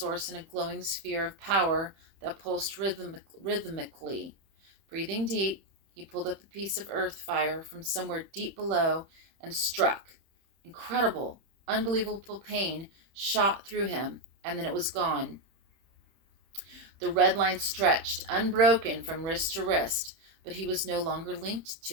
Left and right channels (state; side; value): late; left; 31 ms